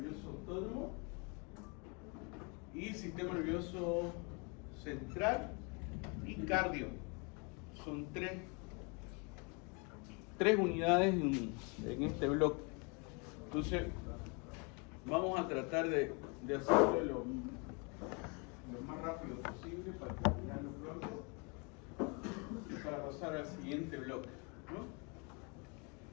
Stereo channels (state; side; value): quieter; right; 32.9 dB